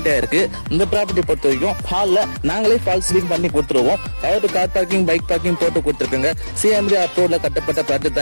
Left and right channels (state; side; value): inverted; both; correlation -1.00